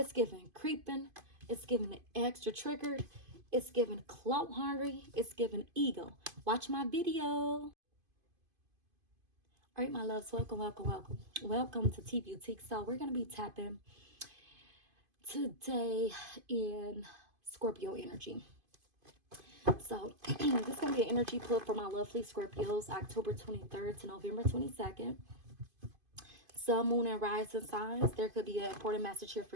giving creeping. It's giving extra triggered. It's giving clout hungry. It's giving ego. Watch my video. All right, my loves, welcome, welcome, welcome. Welcome to T Boutique. So we're going to be tapping today in Scorpio energy. So this is going to be an energy pull for my lovely Scorpios, October 23rd to November 22nd. Sun, moon, and rising signs. There could be an important message here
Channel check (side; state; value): left; late; 2.5 ms